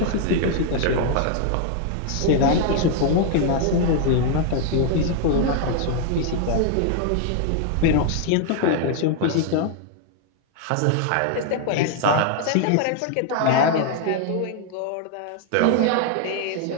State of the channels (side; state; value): both; different; correlation 0.00